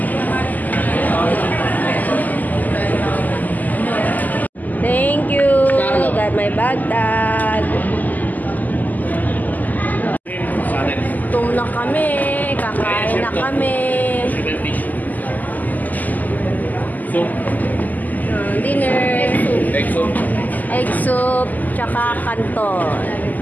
Thank you. Got my bag tag. Tum na kami. Kakain na kami. Dinner. Egg soup. Egg soup. Tsaka kanton.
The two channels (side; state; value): right; late; 0.082 ms